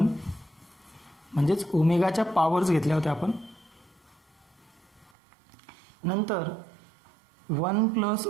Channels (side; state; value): left; drops out; at 5.1 s